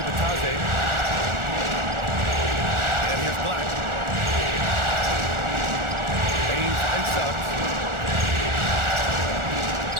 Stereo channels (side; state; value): left; late; 1.4 ms